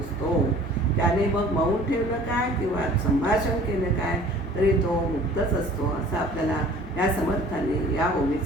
त्याने मग मौन ठेवलं काय किंवा संभाषण केलं काय तरी तो मुक्तच असतो असं आपल्याला या समर्थांनी या ओवीत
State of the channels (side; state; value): both; normal; correlation 0.49